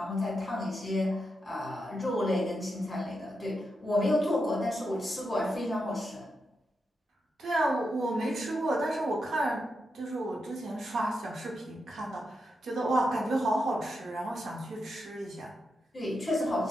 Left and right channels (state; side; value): normal; both; correlation 0.85